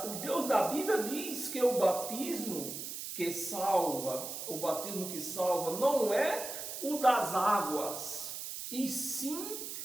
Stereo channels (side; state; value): right; noise; hiss, 7 dB below the sound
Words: Bíblia diz que o batismo que salva não é o das águas, e sim